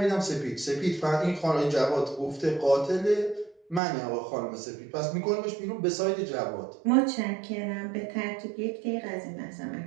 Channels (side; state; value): left; drops out; at 3.8 s